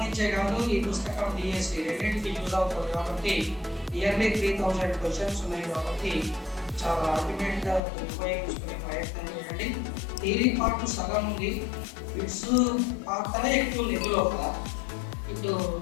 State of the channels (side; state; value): right; drops out; at 7.8 s